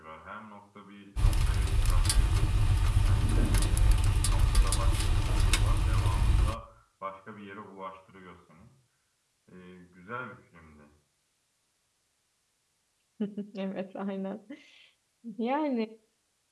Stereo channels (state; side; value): identical; both; correlation 1.00